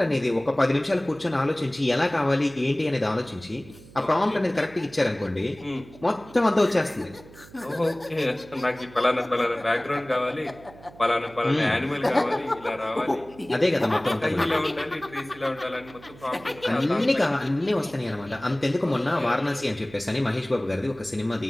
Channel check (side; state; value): right; noise; hum, 21 dB below the sound